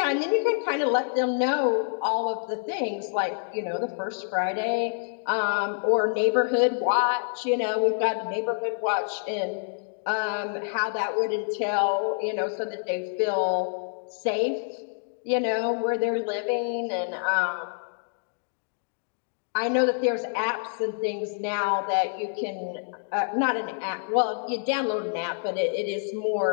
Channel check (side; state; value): right; silent; digital silence